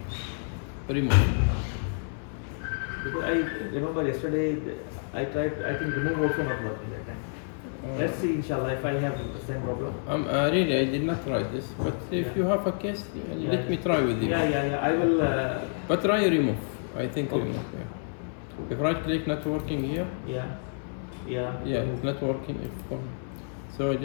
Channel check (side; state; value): right; silent; 59 dB below the other